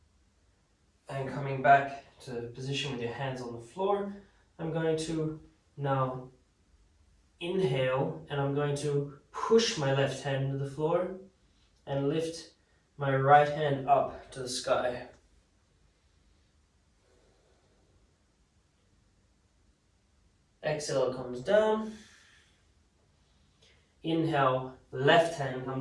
And coming back to position with your hands on the floor, I'm going to now inhale, and I'm going to push my left hand to the floor and lift my right hand up to the sky. Exhale comes down. Inhale, left hand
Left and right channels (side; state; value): both; identical; correlation 1.00